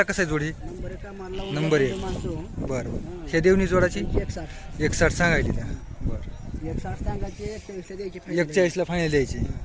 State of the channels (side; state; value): both; identical; correlation 1.00